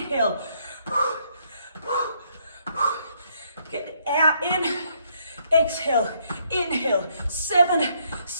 Get the air in. Exhale. Inhale. 7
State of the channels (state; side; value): inverted; both; correlation -0.71